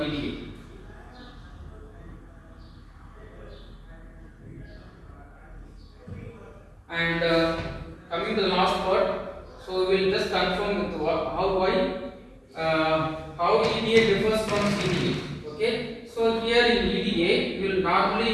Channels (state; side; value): identical; both; correlation 1.00